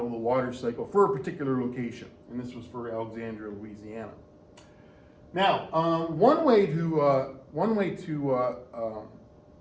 of the water cycle for a particular location, and this was for Alexandria, Louisiana. Now, one way to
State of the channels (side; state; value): both; identical; correlation 1.00